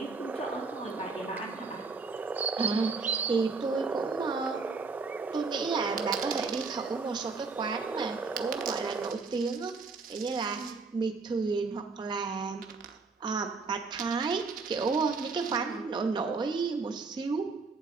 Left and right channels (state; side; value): quieter; left; 4.3 dB